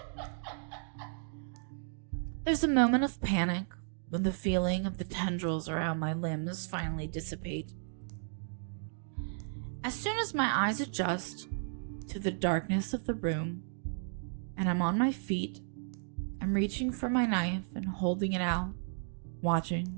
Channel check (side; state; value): left; silent; digital silence